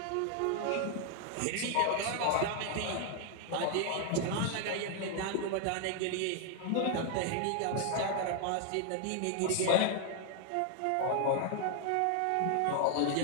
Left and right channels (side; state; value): both; different; correlation 0.00